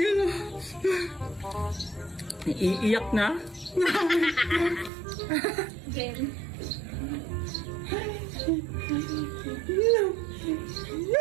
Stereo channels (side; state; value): left; drops out; at 4.9 s